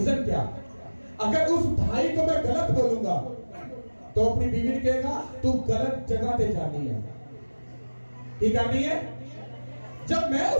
क्या? अगर उस भाई को मैं गलत बोलूंगा तो अपनी बीवी ने कहेगा तू गलत जगह पे जानी है। ये करनी है। जब मैं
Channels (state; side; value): inverted; both; correlation -1.00